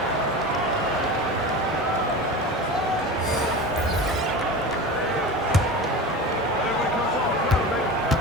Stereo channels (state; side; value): normal; both; correlation 0.30